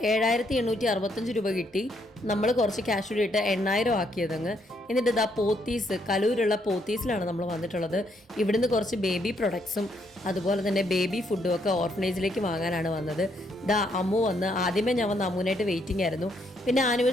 7,865 രൂപ കിട്ടി. നമ്മൾ കുറച്ച് ക്യാഷ് കൂടി ഇട്ട് 8,000 ആക്കിയതങ്ങ്. എന്നിട്ട് ഇതാ പോത്തീസ്, കലൂരുള്ള പോത്തീസിലാണ് നമ്മൾ വന്നിട്ടുള്ളത്. ഇവിടുന്ന് കുറച്ച് ബേബി പ്രൊഡക്ട്സും അതുപോലെ തന്നെ ബേബി ഫുഡും ഒക്കെ ഓർഫനേജിലേക്ക് വാങ്ങാനാണ് വന്നത്. ദാ അമ്മു വന്ന്, ആദ്യമേ ഞാൻ വന്ന് അമ്മുവിനായിട്ട് വെയിറ്റിംഗ് ആയിരുന്നു. പിന്നെ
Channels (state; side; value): normal; both; correlation 0.73